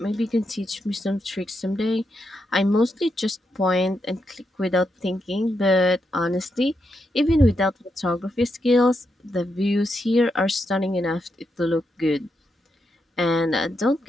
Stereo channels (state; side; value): normal; both; correlation 0.83